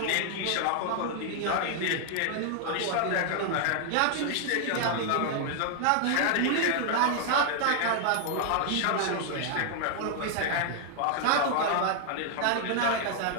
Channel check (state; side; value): different; both; correlation 0.00